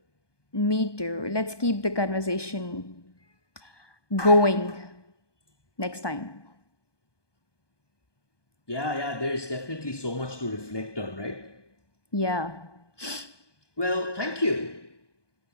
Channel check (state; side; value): late; right; 1.2 ms